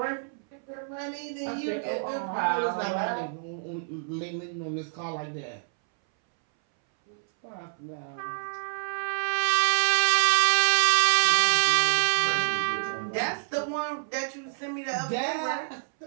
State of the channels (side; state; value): left; silent; 60 dB below the other